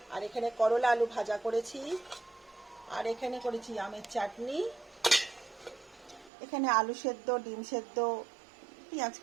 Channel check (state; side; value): drops out; left; at 6.3 s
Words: আর এখানে করলা আলু ভাজা করেছি, আর এখানে করেছি আমের চাটনি, এখানে আলু সেদ্ধ, ডিম সেদ্ধ, পেঁয়াজ